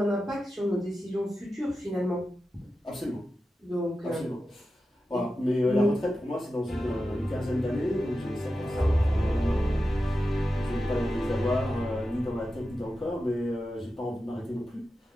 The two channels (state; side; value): normal; both; correlation 0.91